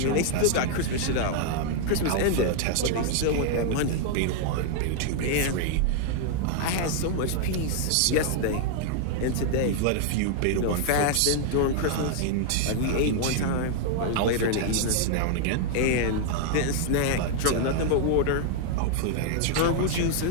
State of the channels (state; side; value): different; both; correlation 0.00